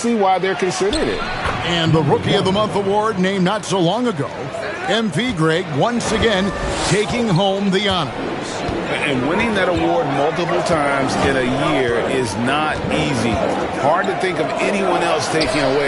why they're considering it. And the Rookie of the Month award named not so long ago, MP Greg once again taking home the honors. And winning that award multiple times in a year is not easy. Hard to think of anyone else taking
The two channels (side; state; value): both; identical; correlation 1.00